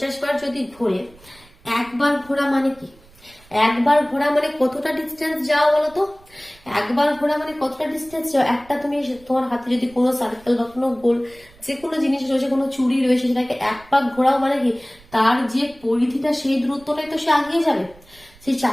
বার যদি ঘোরে, একবার ঘোরা মানে কি? একবার ঘোরা মানে কতটা ডিস্টেন্স যাও বলতো? একবার ঘোরা মানে কতটা ডিস্টেন্স যাও? একটা তুমি তোমার হাতে যদি কোনো সার্কেল বা কোনো গোল যে কোনো জিনিস রয়েছে, কোনো চুড়ি রয়েছে, সেটাকে এক পাক ঘোরাও মানে কি তার যে পরিধিটা সেই দূরত্বটাই তো সে আগিয়ে যাবে, সেই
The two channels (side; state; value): right; noise; rumble, 26 dB below the sound